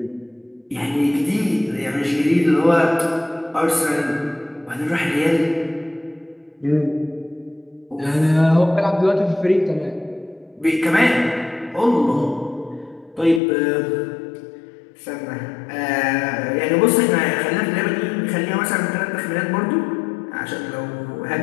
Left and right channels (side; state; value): right; drops out; at 13.4 s